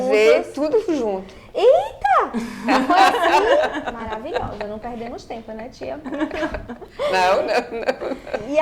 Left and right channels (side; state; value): both; identical; correlation 1.00